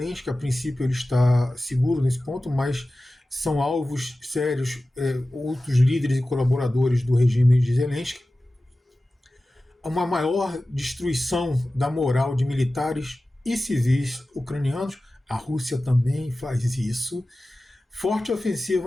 que a princípio ele está seguro nesse ponto, mas são alvos sérios outros líderes e colaboradores do regime de Zelensky, uma maior destruição da moral de militares e civis ucranianos. A Rússia também faz isso. Forte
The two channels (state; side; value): normal; both; correlation 0.95